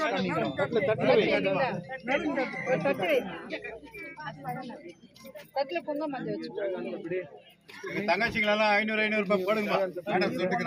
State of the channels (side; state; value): both; identical; correlation 1.00